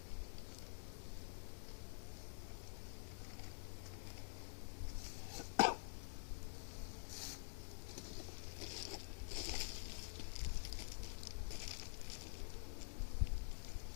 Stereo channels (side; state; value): right; silent; digital silence